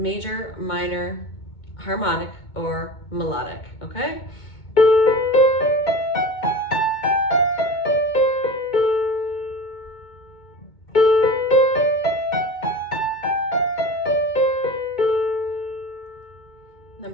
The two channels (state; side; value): late; right; 2.2 ms